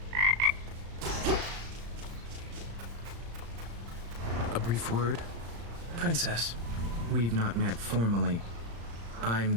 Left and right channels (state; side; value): late; left; 35 ms